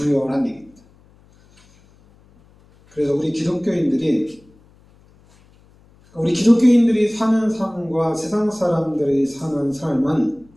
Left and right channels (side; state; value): left; noise; hum, 30 dB below the sound